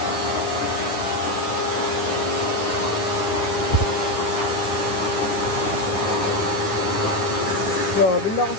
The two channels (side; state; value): right; late; 9.7 ms